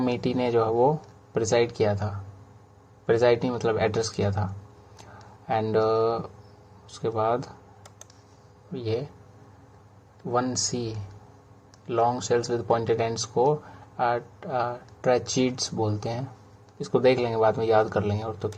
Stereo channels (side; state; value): both; identical; correlation 1.00